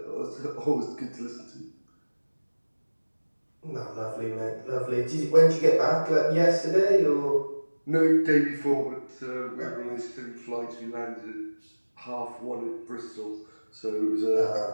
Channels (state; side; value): inverted; both; correlation -1.00